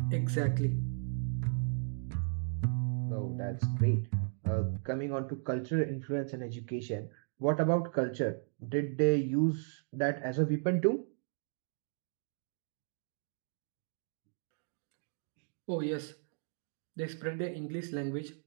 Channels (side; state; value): left; silent; digital silence